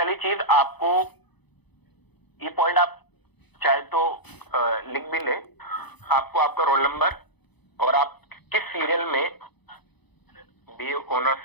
चीज, आपको ये पॉइंट आप चाहे तो लिख भी ले, आपको आपका रोल नंबर और आप किस सीरियल में बीए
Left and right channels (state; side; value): late; right; 0.99 ms